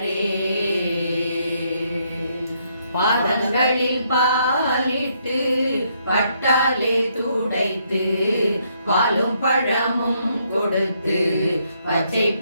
பாதங்களில் பாலிட்டு பட்டாலே துடைத்து பாலும் பழமும் கொடுத்து பச்சை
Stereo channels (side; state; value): both; inverted; correlation -0.73